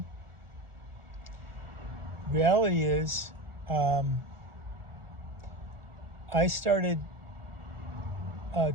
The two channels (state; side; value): late; left; 1.5 ms